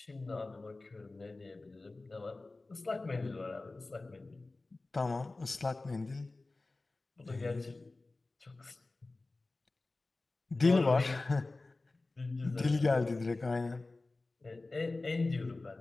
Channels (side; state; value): right; quieter; 3.2 dB